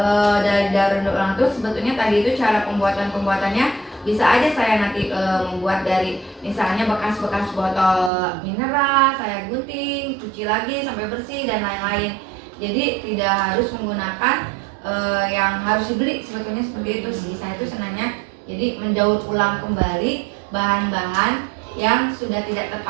dari daur ulang itu sebetulnya tadi itu cara pembuatannya bisa aja saya nanti membuat dari misalnya bekas-bekas botol mineral, saya gunting, cuci lagi sampai bersih dan lain-lain. Jadi tidak harus menggunakan yang harus dibeli, sebetulnya seperti itu sih. Saya tuh senangnya jadi mendaur ulang kembali bahan-bahan yang sudah tidak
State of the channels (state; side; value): drops out; left; at 8.1 s